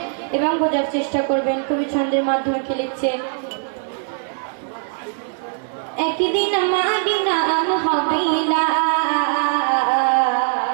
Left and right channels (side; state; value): left; silent; 65 dB below the other